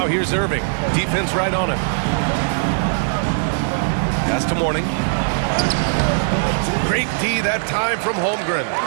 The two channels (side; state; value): left; silent; digital silence